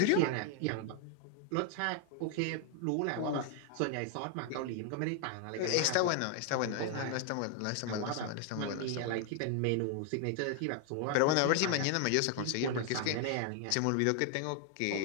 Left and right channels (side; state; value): both; different; correlation 0.00